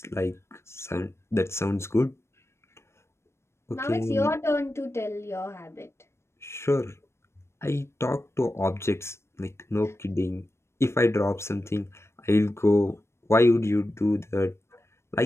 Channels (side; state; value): right; late; 0.13 ms